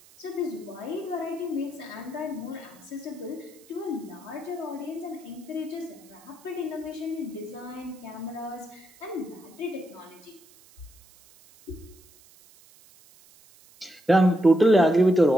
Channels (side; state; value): right; noise; hiss, 25 dB below the sound